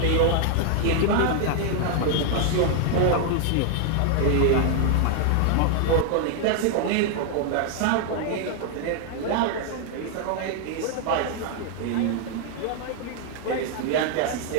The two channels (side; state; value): both; different; correlation 0.00